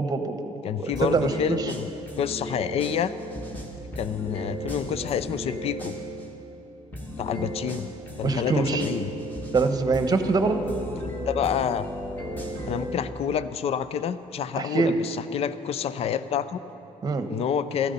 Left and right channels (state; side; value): normal; both; correlation 0.52